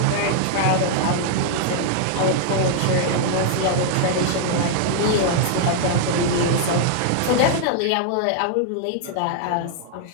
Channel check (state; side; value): different; both; correlation -0.01